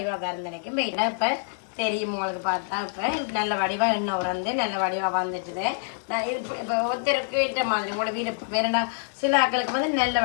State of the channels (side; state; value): right; silent; digital silence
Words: வரந்தனைக்கும் மெயினாக இப்போ தெரியும் உங்களுக்கு பார்த்தா. இப்போ நல்ல வடிவாக எண்ணெய் நல்ல வடிவாக வந்துட்டுது. நான் இது இப்போ ஒருத்தருக்கு ஏற்ற மாதிரி உங்களோட வீடு வேறண்டா. சில ஆக்களுக்கு நல்ல